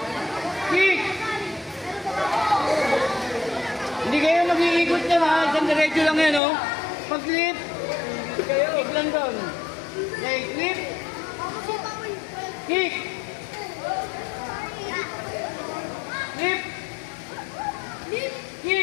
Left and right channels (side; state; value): right; drops out; at 6.4 s